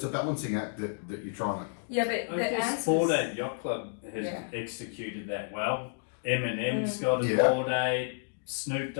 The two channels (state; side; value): silent; right; digital silence